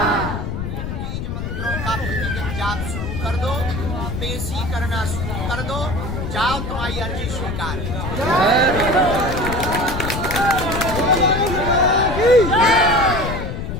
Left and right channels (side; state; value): left; noise; rumble, 4 dB below the sound